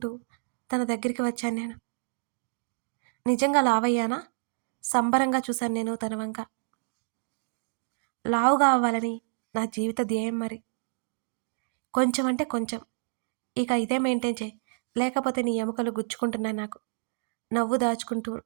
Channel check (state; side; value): silent; left; digital silence